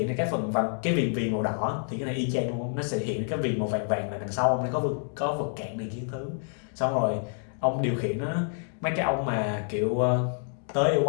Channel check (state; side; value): silent; right; digital silence